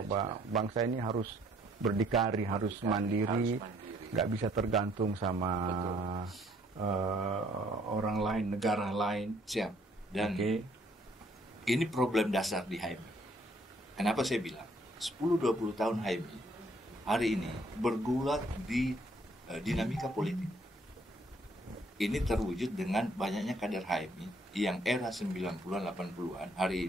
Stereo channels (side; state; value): both; normal; correlation 0.64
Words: bangsa ini harus berdikari, harus mandiri, nggak bisa tergantung sama orang lain, negara lain. Siap. Dan ini problem dasar di HMI. Kenapa saya bilang 10-20 tahun HMI hari ini bergulat di dinamika politik. Ini terwujud dengan banyaknya kader HMI yang era 90-an, 80-an hari